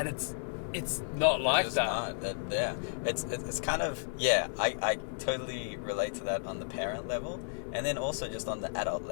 it's not like it's that. Not. Yeah. It's kind of, I totally relate to that on the parent level, and then also just on the adult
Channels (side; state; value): right; silent; 56 dB below the other